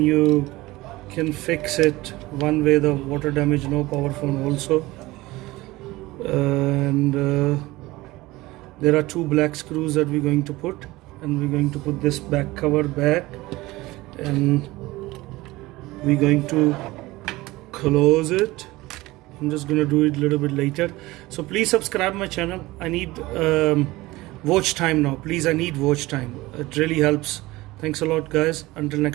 you can fix it one way, the water damage no power phone also. And there are two black screws that we're going to put, and we're going to put this back cover back, and we're going to close it. I'm just going to do it a little bit later. So please subscribe my channel. I need watch time now. Please, I need watch time. It really helps. Thanks a lot, guys. Until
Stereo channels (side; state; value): left; quieter; 19.6 dB